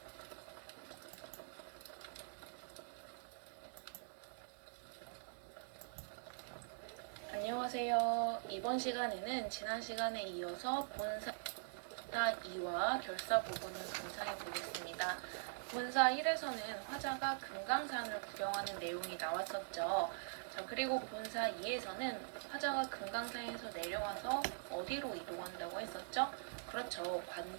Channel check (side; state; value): left; silent; digital silence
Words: 안녕하세요. 이번 시간에는 지난 시간에 이어서 본사 2와 결사 부분을 분석해 보겠습니다. 본사 1에서는 화자가 금강산을 구경하는 내용이 나왔었죠. 자, 그리고 본사 2에서는 화자가 금강산에서 내려와서 어디로 이동한다고 했었죠? 그렇죠.